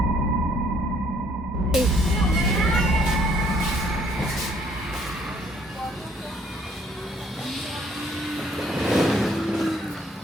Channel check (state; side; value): normal; both; correlation 0.64